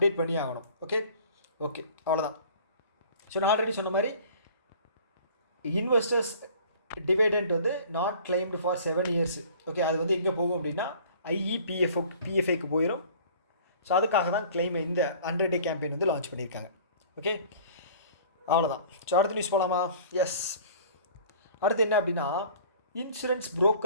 பண்ணி ஆகணும். ஓகே, அவ்வளோதான். ஸோ நான் ஆல்ரெடி சொன்ன மாதிரி இன்வெஸ்டர்ஸ் டிவைடெண்ட் வந்து not claimed for 7 years. Okay, அது வந்து எங்கே போகும் அப்படின்னா பிஎஃப்ஐக்கு போயிடும். ஸோ அதுக்காக தான் கிளைம் இந்த 100 டே கேம்பெயின் வந்து லான்ச் பண்ணியிருக்காங்க. ஓகே, அவ்வளோதான். ஸோ அடுத்த நியூஸ் போகலாமா? எஸ், அடுத்து என்ன அப்படின்னா insurance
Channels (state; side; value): inverted; both; correlation -0.48